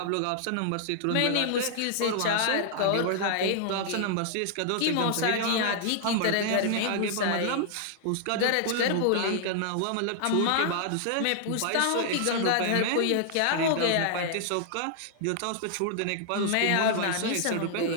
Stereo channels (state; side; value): different; both; correlation -0.01